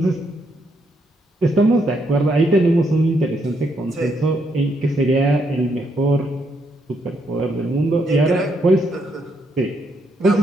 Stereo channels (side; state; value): both; normal; correlation 0.76